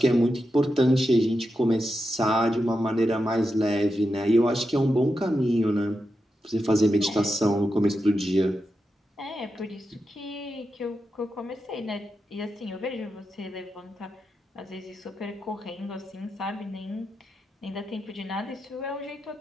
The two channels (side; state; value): both; normal; correlation 0.88